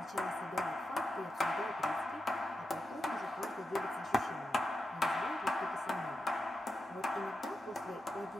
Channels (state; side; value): normal; both; correlation 0.88